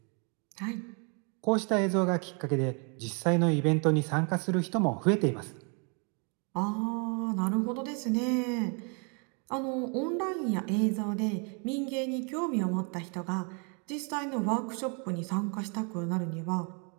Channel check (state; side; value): quieter; left; 36.7 dB